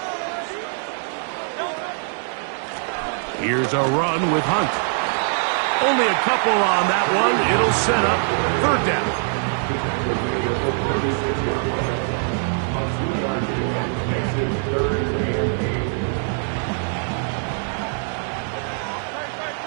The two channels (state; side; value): silent; left; 57 dB below the other